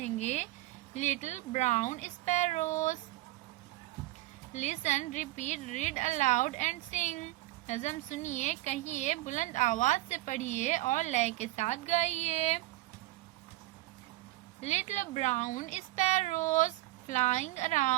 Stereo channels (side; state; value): left; quieter; 18.1 dB